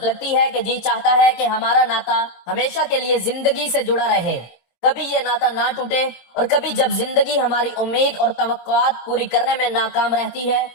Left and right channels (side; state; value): right; late; 22 ms